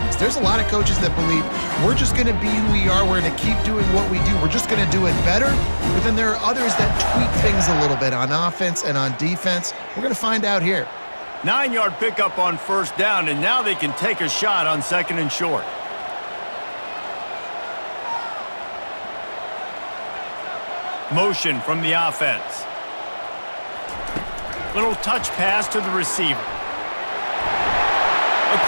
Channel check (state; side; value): inverted; both; correlation -1.00